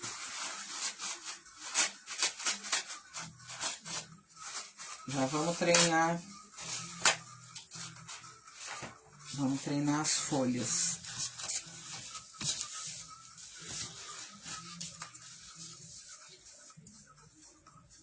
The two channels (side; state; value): both; identical; correlation 1.00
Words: Já vamos treinar. Vamos treinar as folhas.